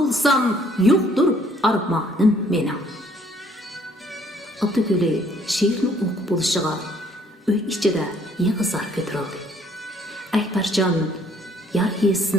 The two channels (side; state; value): both; normal; correlation 0.62